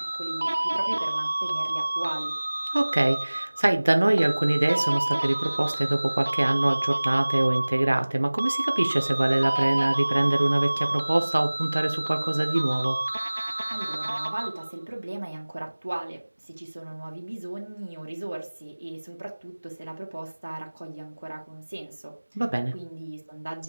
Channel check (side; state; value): both; inverted; correlation -1.00